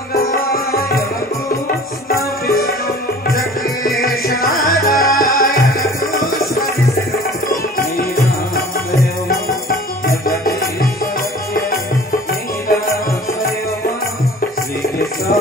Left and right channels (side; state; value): both; normal; correlation 0.45